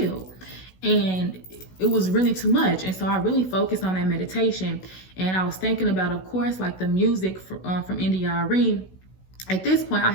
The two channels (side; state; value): right; late; 16 ms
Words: And it was really too much. And so I really focused on that meditation. And I was thinking about, of course, like the music from NDRE. At this point, I